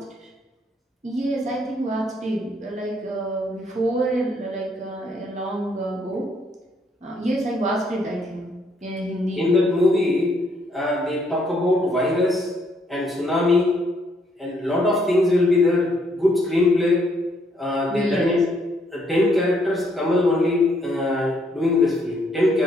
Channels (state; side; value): normal; both; correlation 0.70